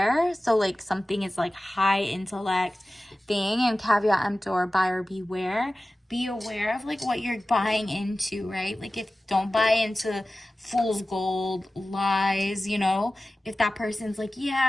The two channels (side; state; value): both; normal; correlation 0.96